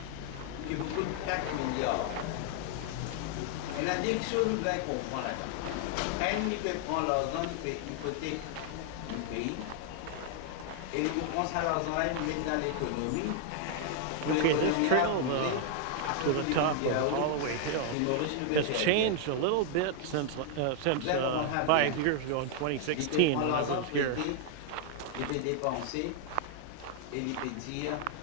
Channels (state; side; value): different; both; correlation 0.00